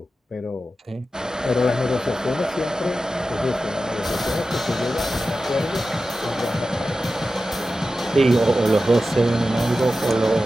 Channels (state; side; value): normal; both; correlation 0.93